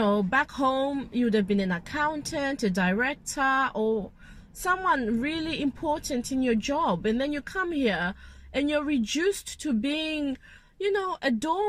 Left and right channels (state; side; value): identical; both; correlation 1.00